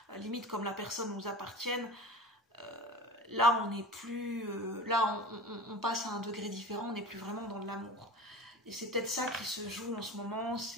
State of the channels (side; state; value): both; normal; correlation 0.35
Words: limite comme la personne nous appartienne, là on n'est plus, là on passe à un degré différent, on n'est plus vraiment dans de l'amour. Et c'est peut-être ça qui se joue en ce moment,